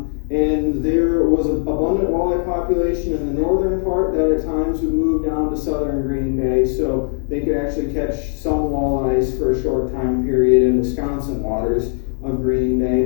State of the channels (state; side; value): silent; right; 66 dB below the other